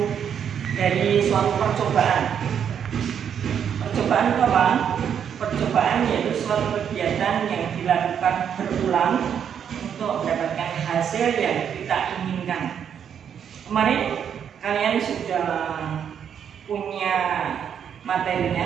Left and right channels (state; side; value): quieter; left; 8.2 dB